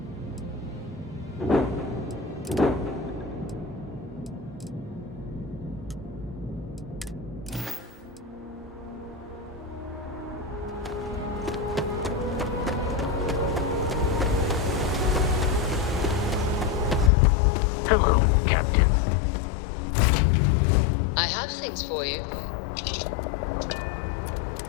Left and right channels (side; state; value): right; drops out; at 17.1 s